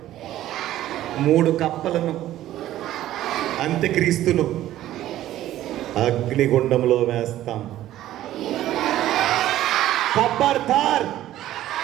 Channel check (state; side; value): quieter; left; 13.6 dB